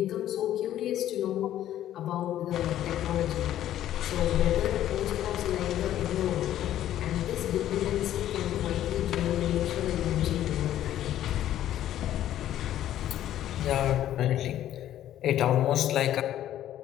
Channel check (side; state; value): right; quieter; 12.2 dB